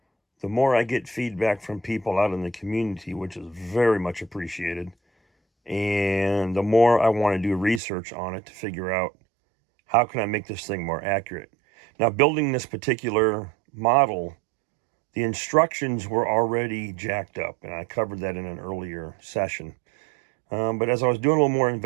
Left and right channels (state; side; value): drops out; left; at 7.8 s